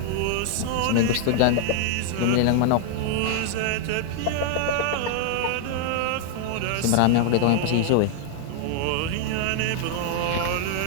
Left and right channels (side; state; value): both; different; correlation 0.00